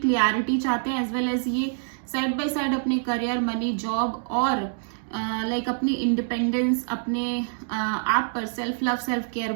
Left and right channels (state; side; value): silent; left; digital silence